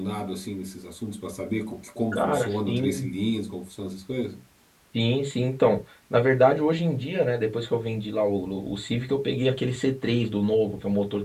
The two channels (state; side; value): identical; both; correlation 1.00